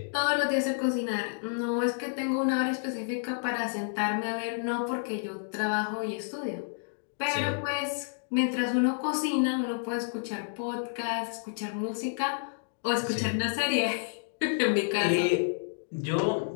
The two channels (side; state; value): right; silent; digital silence